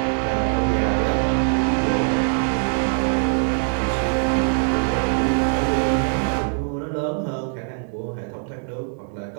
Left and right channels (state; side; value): silent; left; 55 dB below the other